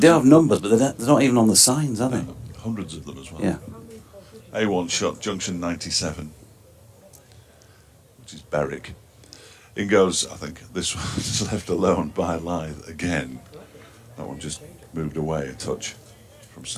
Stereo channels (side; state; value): both; identical; correlation 1.00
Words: have numbers, but they're not even on the signs, are they? Hundreds of them as well. Yeah. A1 shot junction 97, which is Berwick. In goes, I think this one's left alone by Lythe again. That one just moved away a touch from